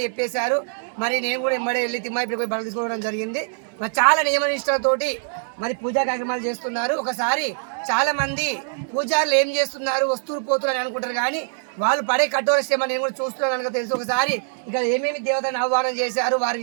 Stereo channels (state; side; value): silent; left; digital silence